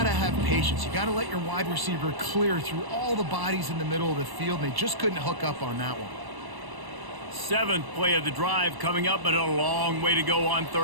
to have patience. You got to let your wide receiver clear through all the bodies in the middle of the field, and they just couldn't hook up on that one. 7th play of the drive coming up, but a long way to go on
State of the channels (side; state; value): left; late; 1.0 ms